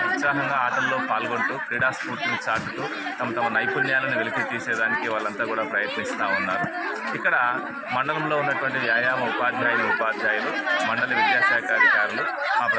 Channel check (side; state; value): both; identical; correlation 1.00